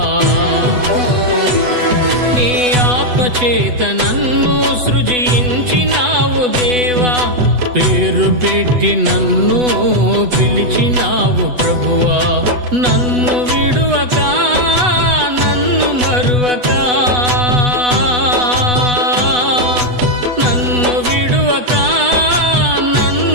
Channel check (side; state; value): left; late; 8.1 ms